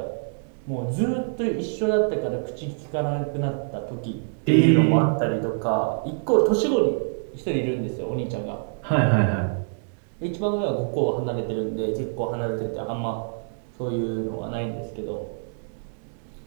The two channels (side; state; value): left; silent; digital silence